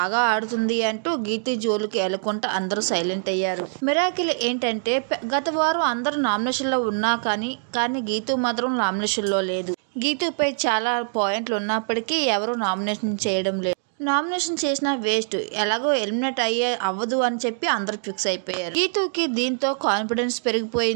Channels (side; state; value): left; silent; digital silence